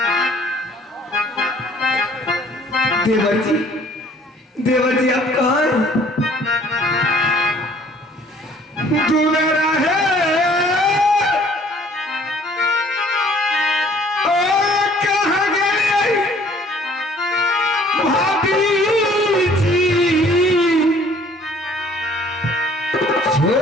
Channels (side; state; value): both; normal; correlation 0.56